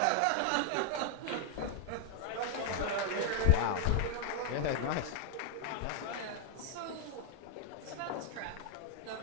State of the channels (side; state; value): both; different; correlation 0.00